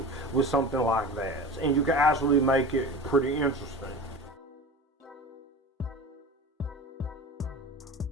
with something like that, and you can actually make it pretty interesting.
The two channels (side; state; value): both; normal; correlation 0.33